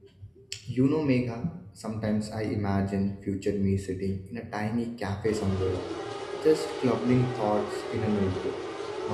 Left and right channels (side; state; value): both; identical; correlation 1.00